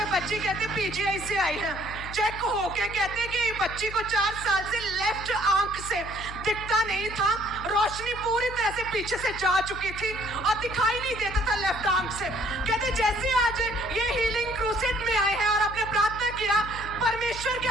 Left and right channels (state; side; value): noise; left; hum, 12 dB below the sound